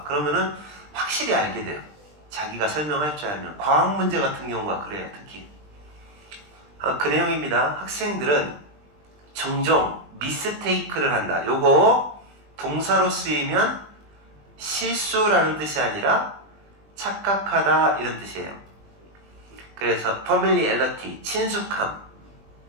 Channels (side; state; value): left; late; 20 ms